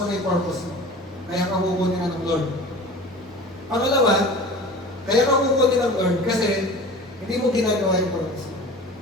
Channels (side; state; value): both; normal; correlation 0.38